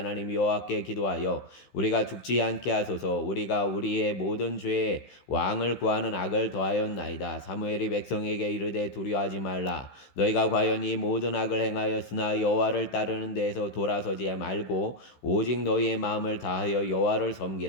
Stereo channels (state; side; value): late; right; 15 ms